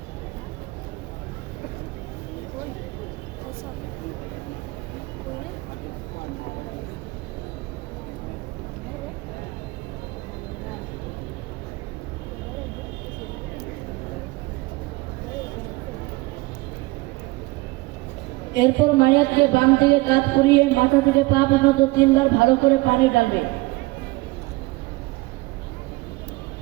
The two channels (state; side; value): quieter; left; 22.0 dB